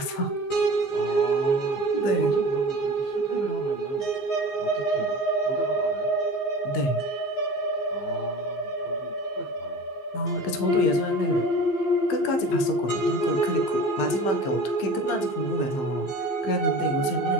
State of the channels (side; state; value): right; late; 15 ms